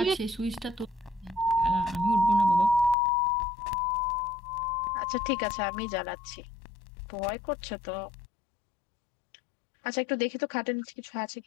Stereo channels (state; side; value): drops out; right; at 3.0 s